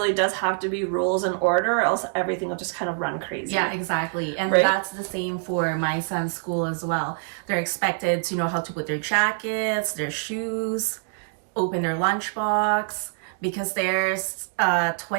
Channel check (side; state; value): left; silent; digital silence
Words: does have to be rules and order, or else everything will just kind of run crazy. Yeah, exactly. And that's the same for my son's school as well. They're expected to know how to put their jackets, their shoes, open their lunchbox, because there's